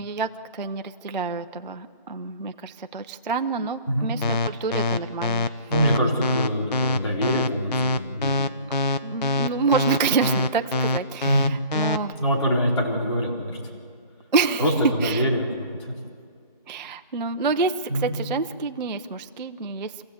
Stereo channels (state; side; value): inverted; both; correlation -0.43